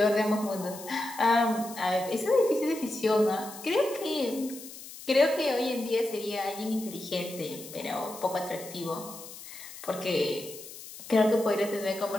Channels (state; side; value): noise; left; hiss, 14 dB below the sound